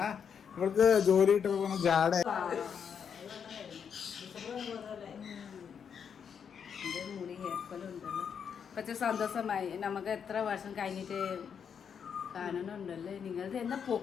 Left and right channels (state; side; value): quieter; right; 7.2 dB